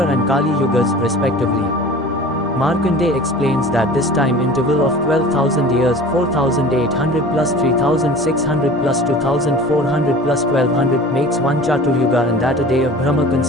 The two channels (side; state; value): both; normal; correlation 0.41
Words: and Kali yugas respectively. Markandeya explains that this time interval of 12,000 years, 4,800 plus 3,600 plus 2,400 plus 1,200 makes one Chaturyuga and that a day of Brahma